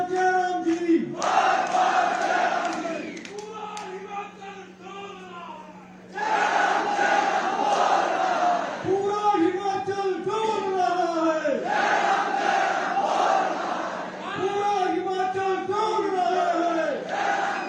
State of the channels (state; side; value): identical; both; correlation 1.00